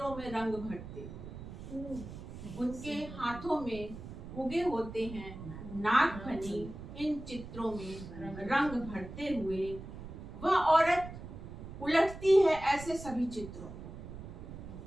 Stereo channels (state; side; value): noise; right; rumble, 11 dB below the sound